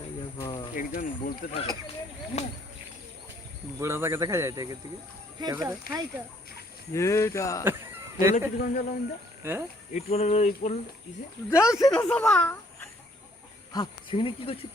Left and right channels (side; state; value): both; normal; correlation 0.64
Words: একজন বলতে থাকে বুড়া তাকে দেখা যায় থেকে থেকে এটা বলে কি কোন জল আমরা হ্যাঁ ইট বলে ইসে যাচ্ছে না সবা হ্যাঁ সেখানে কি করছে